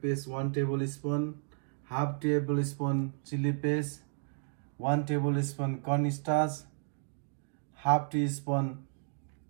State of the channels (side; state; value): left; silent; digital silence